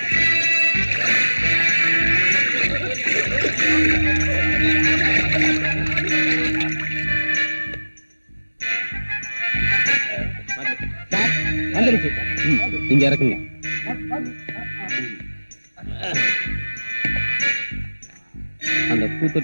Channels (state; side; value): inverted; both; correlation -1.00